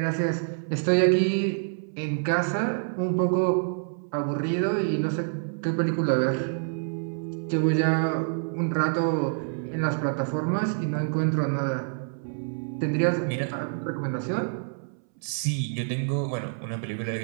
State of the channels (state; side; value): silent; left; 60 dB below the other